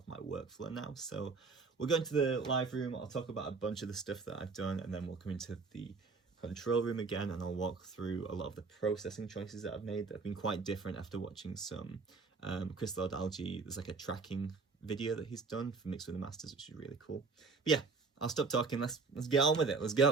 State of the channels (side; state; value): left; quieter; 4.4 dB